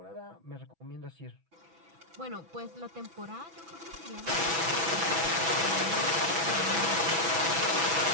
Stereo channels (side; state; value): left; late; 6.1 ms